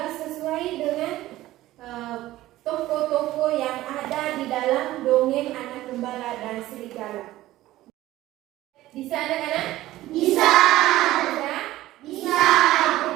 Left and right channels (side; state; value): left; quieter; 15.9 dB